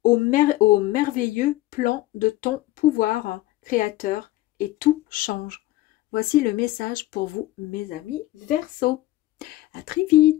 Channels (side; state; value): right; quieter; 17.0 dB